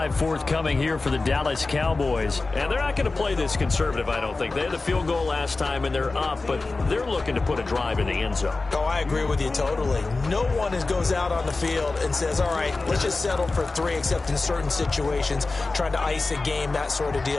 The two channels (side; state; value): right; quieter; 3.5 dB